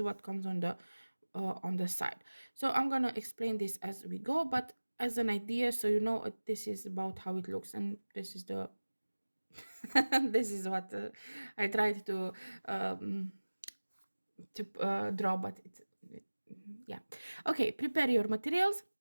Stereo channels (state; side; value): inverted; both; correlation -1.00